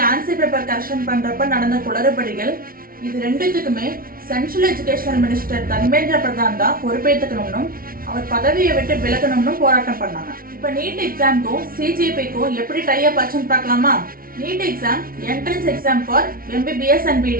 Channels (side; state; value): left; late; 0.43 ms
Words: ஆன்சர் பேப்பர் கரெக்ஷன் பண்றப்ப நடந்த குளறுபடிகள், இது ரெண்டுத்துக்குமே central educational minister Dharmendra Pradhan தான் பொறுப்பேற்றுக்கணும்னு, அவர் பதவியை விட்டு விலகணும்னு போராட்டம் பண்ணாங்க. இப்ப நீட் எக்ஸாம்க்கும் சிஜேபிக்கும் எப்படி டை அப் ஆச்சுன்னு பார்க்கலாமா? NEET exam entrance exam for MBBS and